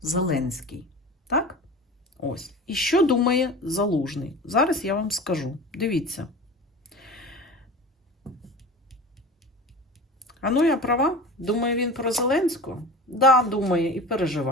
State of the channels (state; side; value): normal; both; correlation 0.35